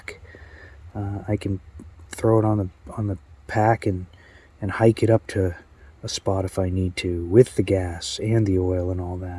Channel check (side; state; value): both; identical; correlation 1.00